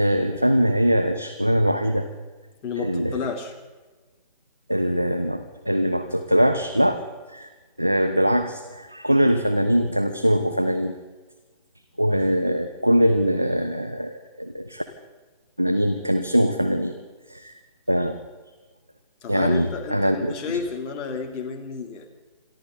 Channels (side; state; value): both; inverted; correlation -0.91